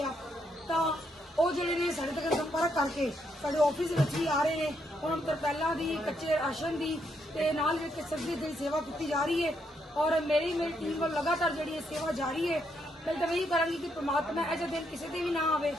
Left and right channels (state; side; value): normal; both; correlation 0.76